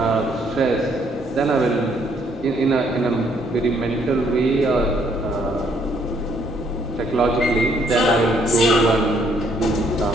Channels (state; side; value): normal; both; correlation 0.68